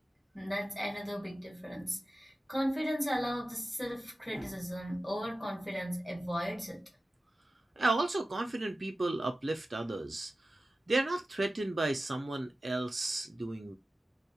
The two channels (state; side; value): normal; both; correlation 0.95